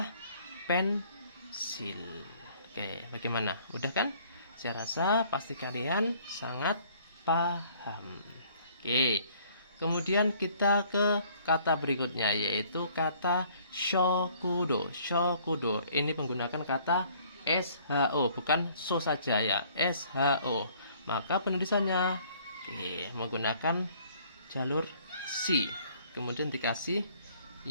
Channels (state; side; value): inverted; both; correlation -0.58